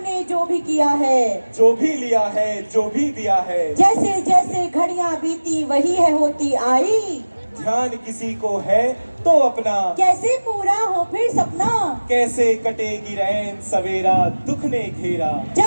ने जो भी किया है, जो भी लिया है, जो भी दिया है, जैसे जैसे घड़ियां बीती वही है होती आई। ध्यान किसी को है तो अपना, कैसे पूरा हो फिर सपना, कैसे कटेगी रैन सवेरा दुख ने घेरा।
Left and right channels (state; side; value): inverted; both; correlation -1.00